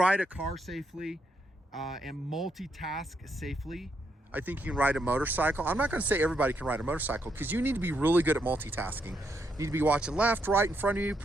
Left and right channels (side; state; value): both; normal; correlation 0.78